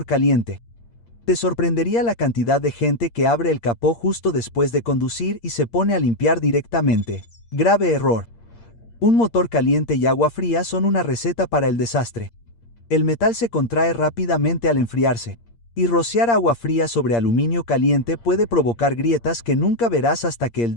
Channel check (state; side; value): late; right; 8.6 ms